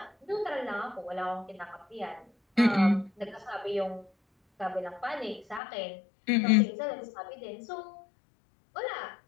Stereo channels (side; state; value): right; drops out; at 5.6 s